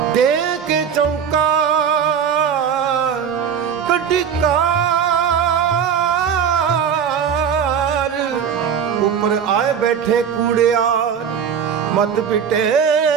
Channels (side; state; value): left; quieter; 7.6 dB